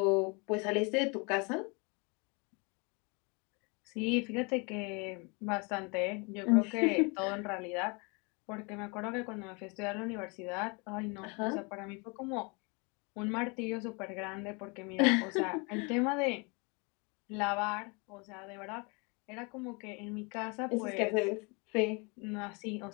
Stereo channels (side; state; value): right; quieter; 30.7 dB